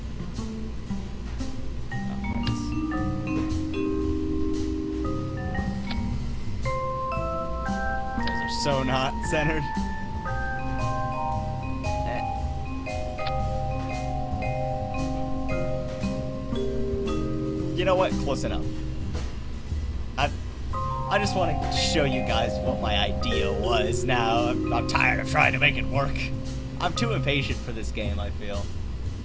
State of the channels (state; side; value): identical; both; correlation 1.00